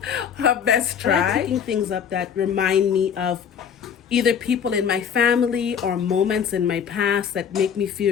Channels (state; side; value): quieter; right; 7.7 dB